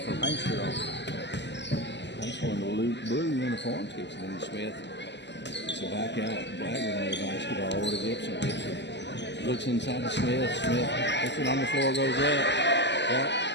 Paintsville. That's one of the blue uniforms. Gibson and Smith. It's a back out. Blackman on the basketball over to Gibson. Gibson looks inside to Smith. Smith puts it on the floor, goes up.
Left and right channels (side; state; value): right; late; 0.51 ms